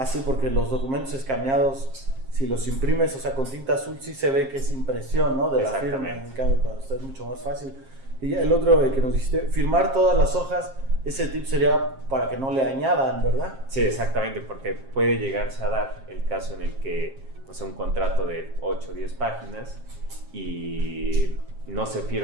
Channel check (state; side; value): late; left; 7.5 ms